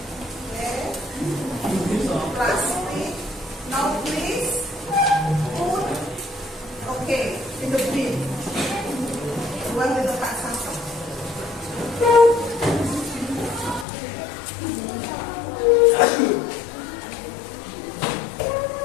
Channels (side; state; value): right; drops out; at 13.9 s